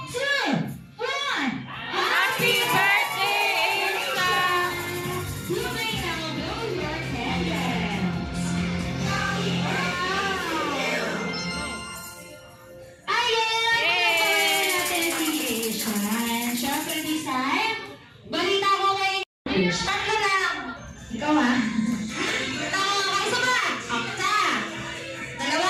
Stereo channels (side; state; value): both; identical; correlation 1.00